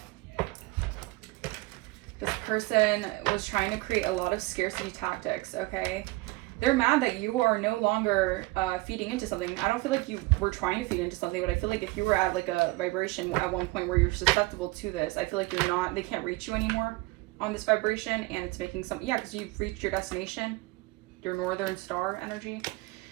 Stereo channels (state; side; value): quieter; left; 22.6 dB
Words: This person was trying to create a lot of scarcity tactics, okay? they're mad that you are no longer feeding into something. I don't feel like you were trying to feed into something, but I feel like if you were at like a vibration at one point where you're susceptible to this, I feel like you're not, they can't reach you anymore on this vibration, and it's making some, yeah, because you've reached your destination, your northern star energy.